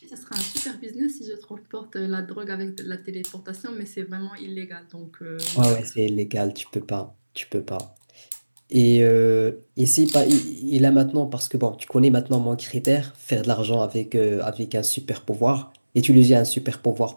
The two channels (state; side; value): inverted; both; correlation -1.00